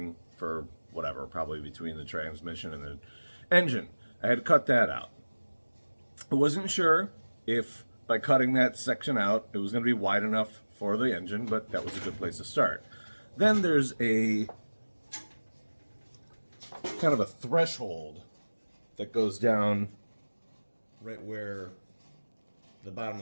for whatever, probably between the transmission and the engine. I had to cut that out. I wasn't sure if by cutting that section out it was going to be wide enough for the engine, but that was a good place to start. Then there's a kind of a threshold that goes down right where the bottom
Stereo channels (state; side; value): inverted; both; correlation -1.00